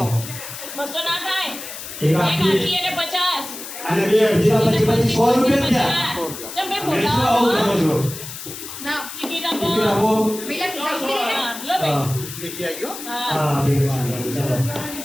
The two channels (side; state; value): left; noise; hiss, 10 dB below the sound